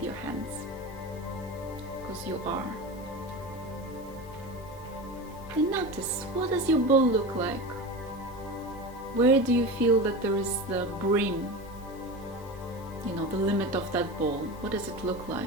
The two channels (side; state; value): both; normal; correlation 0.27